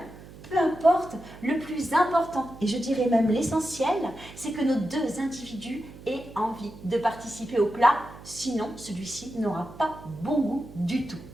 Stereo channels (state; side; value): noise; right; hum, 17 dB below the sound